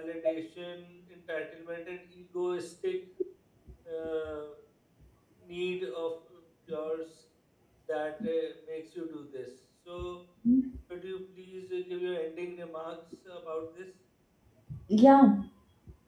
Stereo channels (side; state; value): both; identical; correlation 1.00